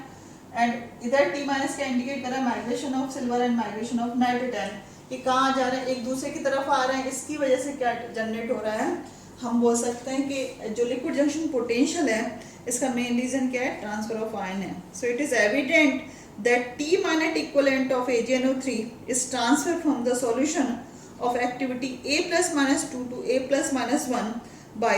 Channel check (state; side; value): identical; both; correlation 1.00